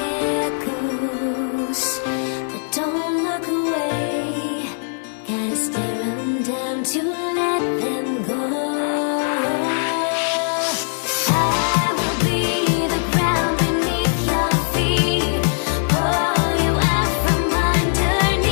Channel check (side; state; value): right; silent; digital silence